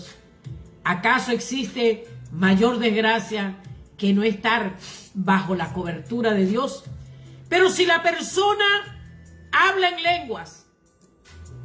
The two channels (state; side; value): identical; both; correlation 1.00